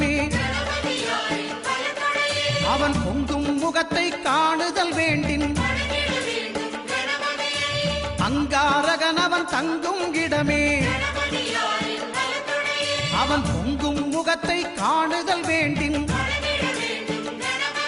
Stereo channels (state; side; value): identical; both; correlation 1.00